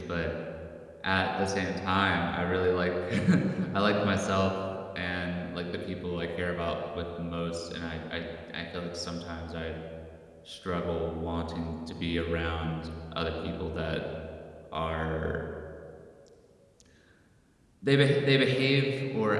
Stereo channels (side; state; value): both; identical; correlation 1.00